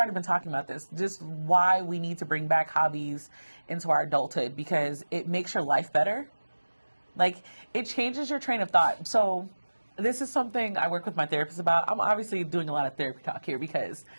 been talking about this, just why we need to bring back hobbies into our adulthood because it makes your life better. Like, it changes your train of thought. So this is something I work with my therapist about. I'm obviously doing a lot of therapy talk here because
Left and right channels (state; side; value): inverted; both; correlation -1.00